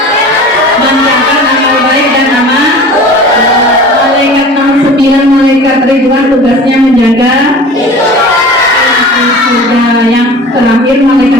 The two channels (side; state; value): both; normal; correlation 0.40